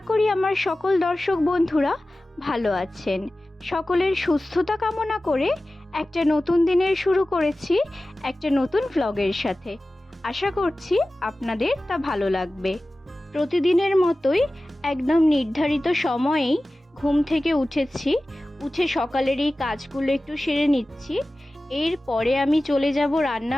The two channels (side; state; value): both; normal; correlation 0.96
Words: করি আমার সকল দর্শক বন্ধুরা ভালো আছেন। সকলের সুস্থতা কামনা করে একটা নতুন দিনের শুরু করেছি একটা নতুন ভ্লগের সাথে। আশা করছি আপনাদের তা ভালো লাগবে। প্রতিদিনের মতোই একদম নির্ধারিত সময়েই ঘুম থেকে উঠে সকালের এই কাজগুলো একটু সেরে নিচ্ছি। এরপরে আমি চলে যাব